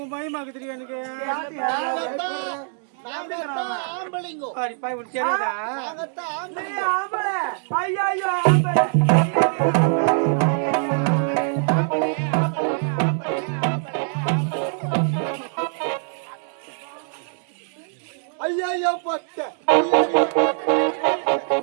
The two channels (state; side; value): silent; left; 63 dB below the other